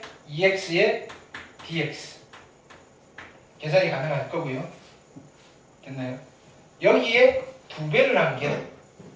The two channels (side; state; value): both; identical; correlation 1.00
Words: 2x의 dx. 계산이 가능할 거고요. 됐나요? 여기에 2배를 한 게